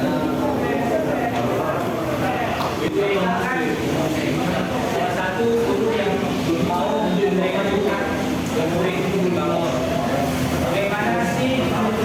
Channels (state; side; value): identical; both; correlation 1.00